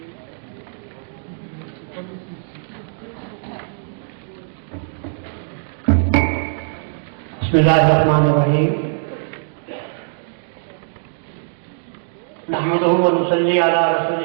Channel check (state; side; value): silent; left; digital silence